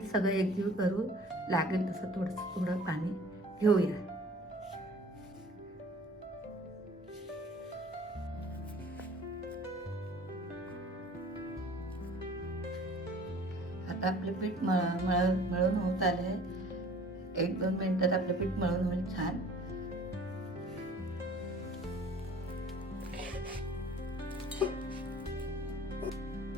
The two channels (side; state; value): both; normal; correlation 0.49